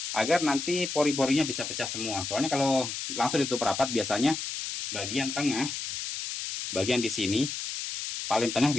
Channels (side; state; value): left; noise; hiss, 5 dB below the sound